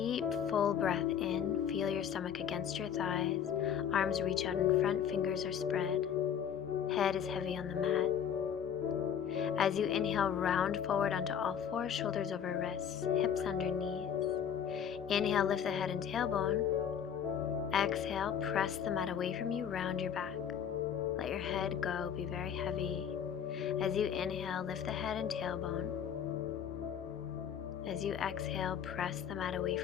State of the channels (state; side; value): quieter; right; 8.4 dB